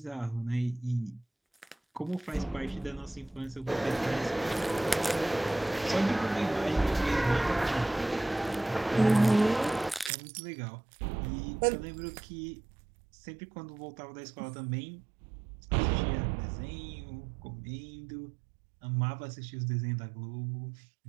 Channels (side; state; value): left; drops out; at 10.1 s